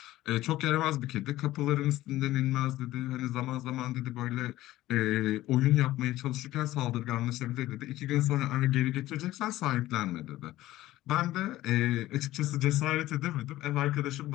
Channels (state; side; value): quieter; right; 15.9 dB